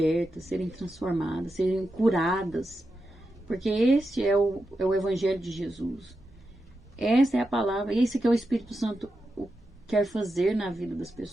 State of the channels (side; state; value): both; normal; correlation 0.88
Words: serem transformadas, serem curadas, porque este é o Evangelho de Jesus. Essa é a palavra, esse que é o Espírito Santo quer fazer na vida das